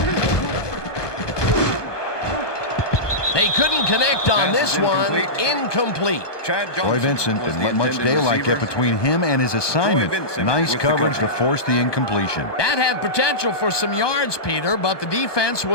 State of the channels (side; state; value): right; late; 1.2 ms